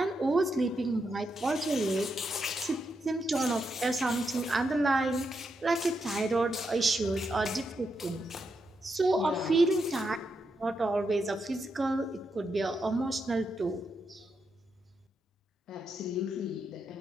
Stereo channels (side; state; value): both; normal; correlation 0.83